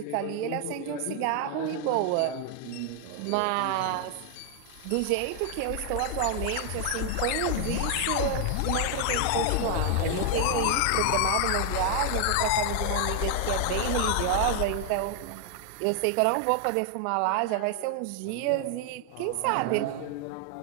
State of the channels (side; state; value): both; different; correlation 0.00